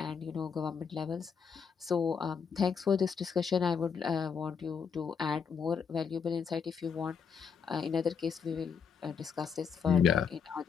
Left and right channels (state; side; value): quieter; right; 6.4 dB